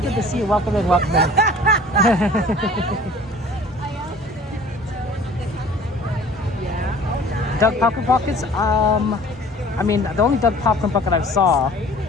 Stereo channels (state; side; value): normal; both; correlation 0.48